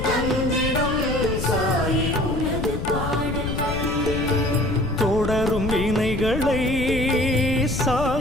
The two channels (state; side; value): noise; left; rumble, 4 dB below the sound